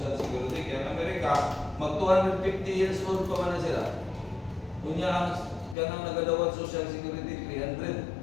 Security. Kaya ang Amerika, mag 250 years old pa man na sila. Kunya ang kanang nagadawat Social Security 300.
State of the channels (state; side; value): drops out; right; at 5.8 s